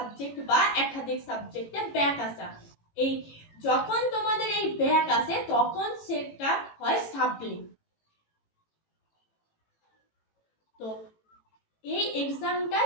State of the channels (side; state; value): right; late; 18 ms